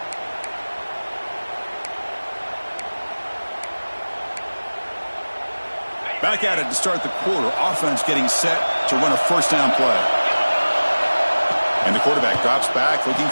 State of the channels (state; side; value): inverted; both; correlation -1.00